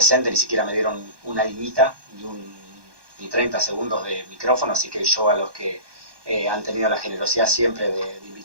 ni siquiera me dieron una liñita, ni 30 segundos de micrófono, así que yo a los que han tenido la generosidad siempre de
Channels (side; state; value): left; late; 1.2 ms